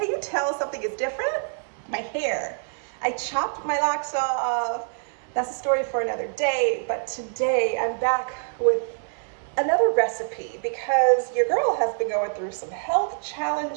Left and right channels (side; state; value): left; silent; digital silence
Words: you tell something is different? My hair. I chopped my locks off. That's a story for another day, but today I'm back with another recipe because your girl has been going through some health